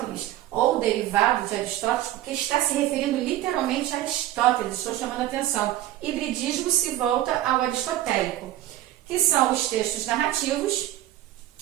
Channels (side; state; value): left; quieter; 14.0 dB